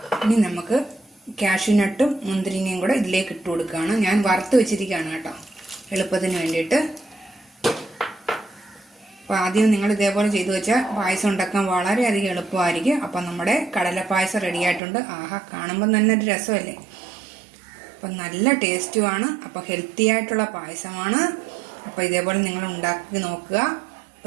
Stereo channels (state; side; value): drops out; left; at 14.8 s